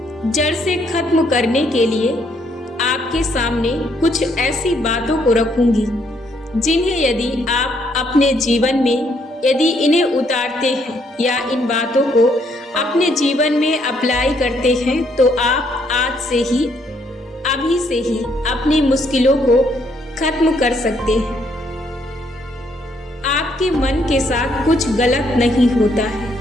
जड़ से खत्म करने के लिए आपके सामने कुछ ऐसी बातों को रखूंगी जिन्हें यदि आप अपने जीवन में यदि इन्हें उतारते हैं या इन बातों को अपने जीवन में अप्लाई करते हैं तो आप आज से ही अभी से ही अपनी मुश्किलों को खत्म कर सकते हैं। आपके मन के साथ कुछ गलत नहीं होता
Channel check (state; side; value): normal; both; correlation 0.71